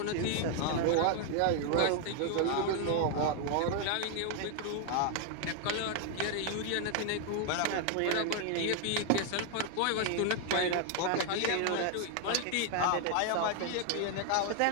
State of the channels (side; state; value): both; different; correlation 0.00